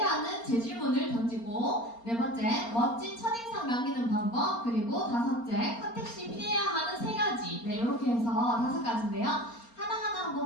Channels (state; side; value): late; right; 4.3 ms